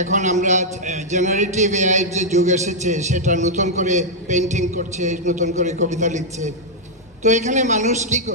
এখন আমরা জেনারেটিভ এআইয়ের যে যুগ এসেছে, সেটা নতুন করে পেন্টিং করছে, নতুন করে কবিতা লিখছে। তো এখানে মানুষ কি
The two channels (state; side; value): normal; both; correlation -0.04